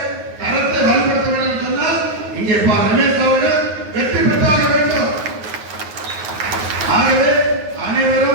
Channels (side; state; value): left; late; 9.5 ms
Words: கரத்தை இங்கே ரமேஷ் அவர்கள் வெற்றி பெற்றாக வேண்டும். ஆகவே